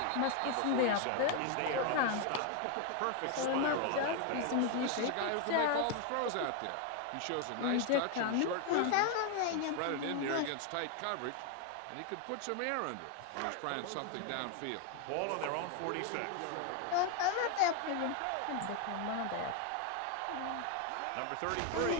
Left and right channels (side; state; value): both; different; correlation 0.01